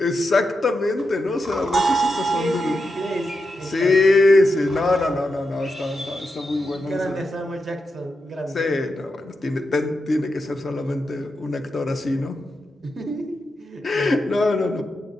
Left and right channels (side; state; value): both; normal; correlation 0.87